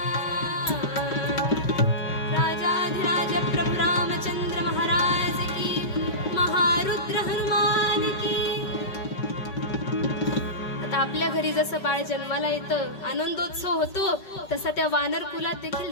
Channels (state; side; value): late; right; 5.3 ms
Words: राजाधिराज प्रभु रामचंद्र महाराज की. महारुद्र हनुमान की. आता आपल्या घरी जसं बाळ जन्माला येतं, आनंदोत्सव होतो, तसा त्या वानर कुलात देखील